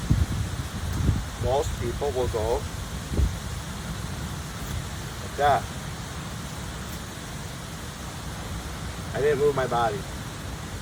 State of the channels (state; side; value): identical; both; correlation 1.00